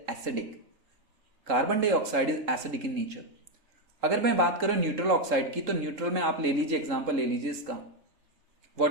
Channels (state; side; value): late; left; 3.4 ms